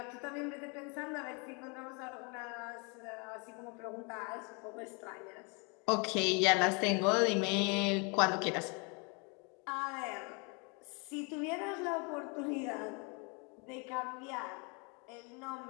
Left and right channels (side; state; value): right; quieter; 33.1 dB